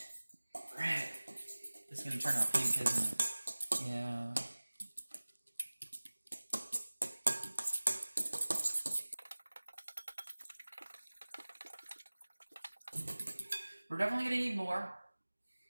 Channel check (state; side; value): inverted; both; correlation -1.00